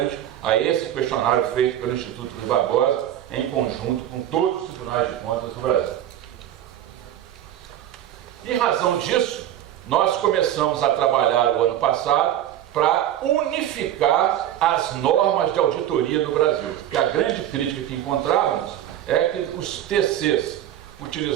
a esse questionário feito pelo Instituto Rui Barbosa, em conjunto com todos os tribunais de contas do Brasil. Em razão disso, nós começamos a trabalhar o ano passado para unificar as normas de auditoria do Brasil. Porque a grande crítica que encontrávamos é que os TCs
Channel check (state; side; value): quieter; left; 11.7 dB